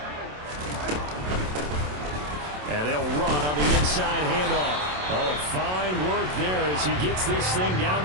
And they'll run on the inside handoff. Oh, fine work there as he gets this thing down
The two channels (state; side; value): late; left; 27 ms